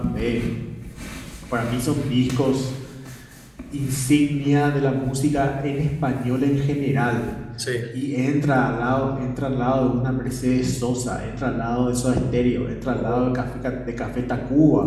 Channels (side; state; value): both; identical; correlation 1.00